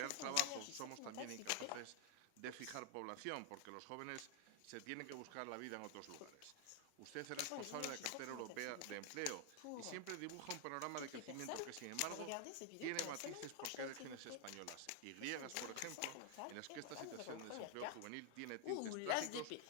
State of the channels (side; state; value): both; different; correlation 0.00